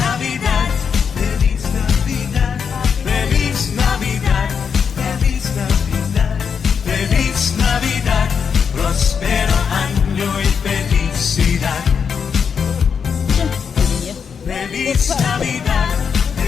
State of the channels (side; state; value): right; quieter; 6.6 dB